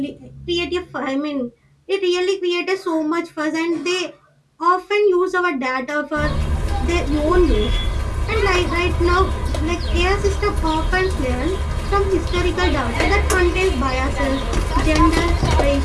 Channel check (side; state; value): both; identical; correlation 1.00